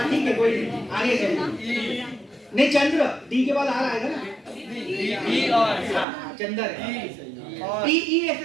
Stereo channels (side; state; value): left; drops out; at 6.1 s